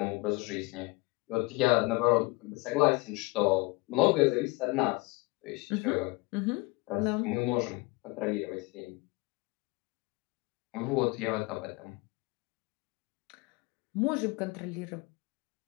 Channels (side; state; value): right; quieter; 25.2 dB